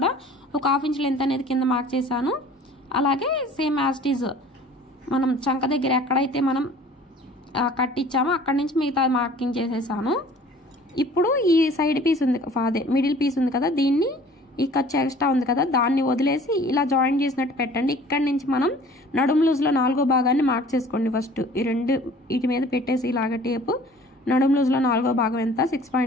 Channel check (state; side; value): normal; both; correlation 0.49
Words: ఒక 1/2 ఇంచ్ లెంత్ అనేది కింద మార్క్ చేశాను. అలాగే సేమ్ యాజ్ ఇట్ ఈజ్ మనం చంక దగ్గర ఎక్కడైతే మనం కట్ ఇచ్చామో అక్కడి నుంచి మిగతా మార్కింగ్ చేసేసాను. ఇప్పుడు ఈ సైడ్ పీస్ ఉంది, అదే మిడిల్ పీస్ ఉంది కదా, దీన్ని ఈ ఖర్చు ఎక్స్ట్రా ఉంది కదా దాన్ని వదిలేసి ఇలా జాయిన్ చేసినట్టు పెట్టండి. ఇక్కడి నుంచి మనం నడుము లూజ్లో 4వ భాగాన్ని మార్క్ చేసుకోండి. ఫస్ట్ ఈ 2 వీటి మీద పెట్టేసి ఇలాగ టేపు నడుము లూజ్లో 4వ భాగం ఎంత